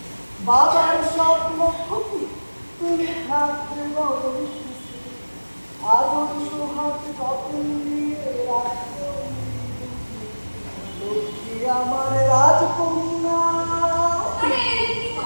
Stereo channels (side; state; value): both; inverted; correlation -1.00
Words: বাবার স্বপ্ন খুশি তুমি থাকতে বড় সুখে, আদর সোহাগ যত্ন নিয়ে রাখো লক্ষ্মী আমার রাজকন্যা। আরে কি